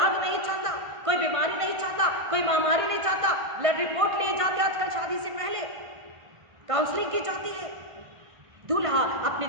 नहीं चाहता, कोई बीमारी नहीं चाहता, कोई महामारी नहीं चाहता। ब्लड रिपोर्ट लिए जाते आजकल शादी से पहले, काउंसलिंग की जाती है। दूल्हा अपनी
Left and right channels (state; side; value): late; left; 1.6 ms